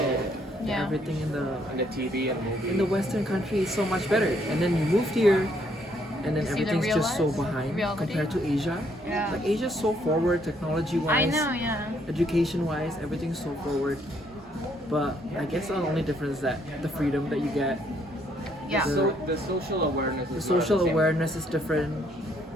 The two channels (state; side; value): normal; both; correlation 0.69